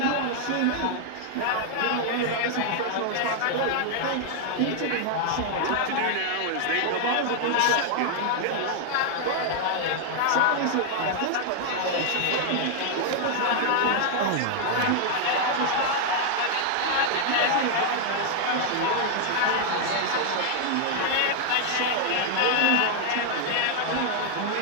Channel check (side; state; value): both; different; correlation 0.00